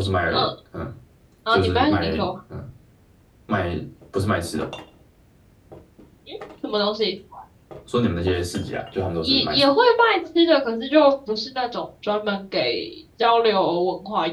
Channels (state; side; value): identical; both; correlation 1.00